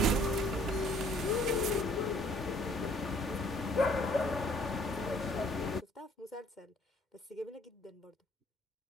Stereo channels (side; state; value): both; normal; correlation 0.60